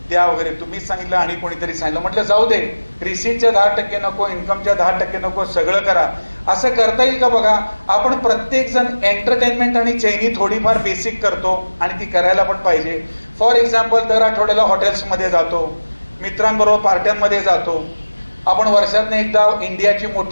द्या वगैरे, तुम्हीच सांगितलं आणि कोणीतरी सांगितलं. म्हटलं जाऊ दे, रिसीटच्या 10% नको, इन्कमच्या 10% नको, सगळं करा. असं करता येईल का बघा. आपण प्रत्येक जण एंटरटेनमेंट आणि चैनी थोडीफार बेसिक करतो आणि ती करायला पण पाहिजे. फॉर एक्झाम्पल, दर आठवड्याला हॉटेल्समध्ये जातो, मित्रांबरोबर पार्ट्यांमध्ये जातो. आपण वर्षातनं एकदा इंडियाची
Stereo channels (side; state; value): both; inverted; correlation -1.00